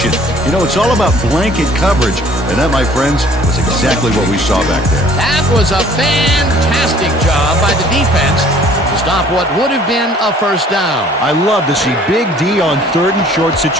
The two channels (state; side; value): normal; both; correlation 0.54